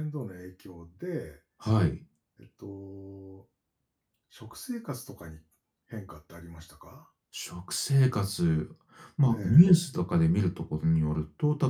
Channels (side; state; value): both; identical; correlation 1.00